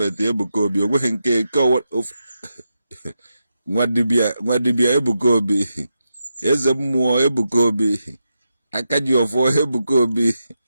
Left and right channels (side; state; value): both; inverted; correlation -0.87